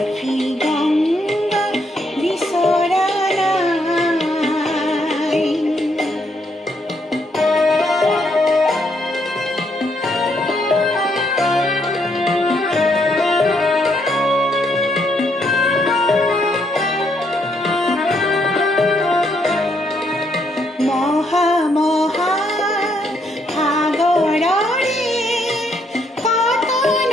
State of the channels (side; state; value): both; normal; correlation 0.74